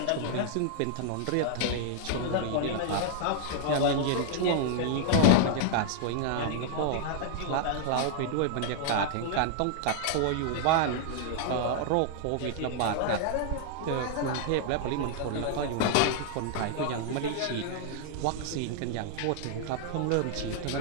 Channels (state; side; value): different; both; correlation -0.01